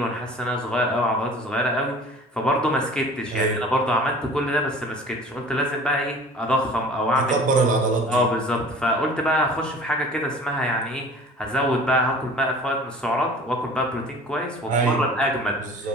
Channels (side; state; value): both; normal; correlation 0.45